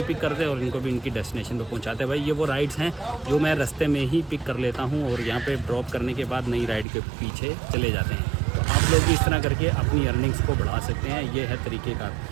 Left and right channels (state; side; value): drops out; left; at 6.9 s